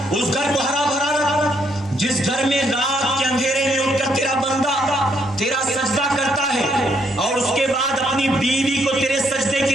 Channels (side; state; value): both; normal; correlation 0.73